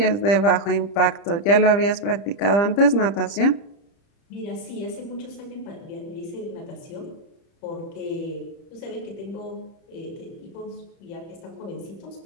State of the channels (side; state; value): right; late; 30 ms